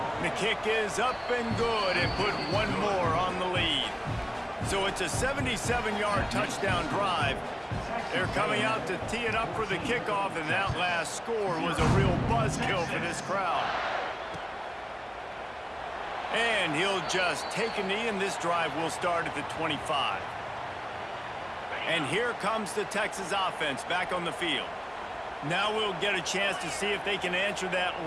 The kick is up and good and put one more on the lead. So it's a 77-yard touchdown drive. They're coming out to tee it up for the kickoff, and that last score was a real buzzkill for this crowd. And he'll just take a knee, and this drive will start at the 25. And here comes the Texas offense back on the field. Now we'll get a chance to see if they can answer that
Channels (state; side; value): identical; both; correlation 1.00